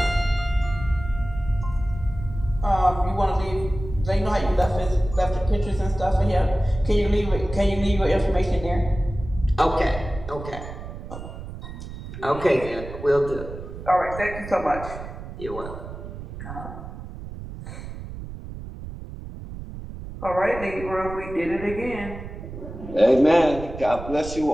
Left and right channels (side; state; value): right; noise; rumble, 11 dB below the sound